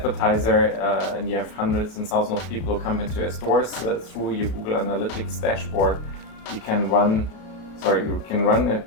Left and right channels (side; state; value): right; late; 33 ms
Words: and you have hundreds and thousands of people who come into your stores through your Google Analytics dashboard, you can run a